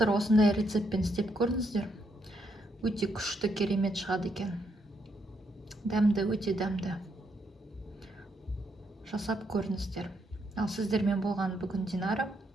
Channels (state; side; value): normal; both; correlation 0.76